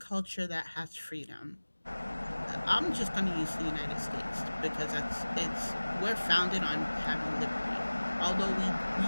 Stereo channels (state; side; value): inverted; both; correlation -1.00